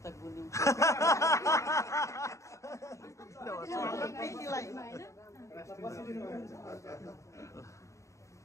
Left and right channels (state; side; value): late; right; 0.15 ms